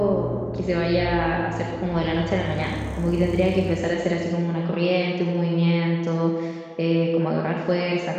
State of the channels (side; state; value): both; identical; correlation 1.00